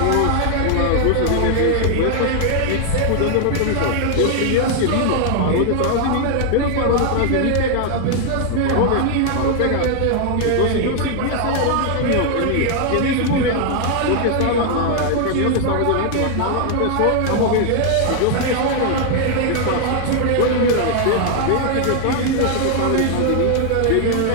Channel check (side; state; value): both; different; correlation 0.00